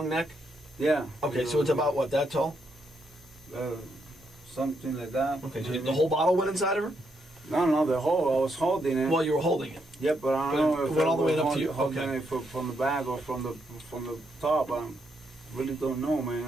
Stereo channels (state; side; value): normal; both; correlation 0.78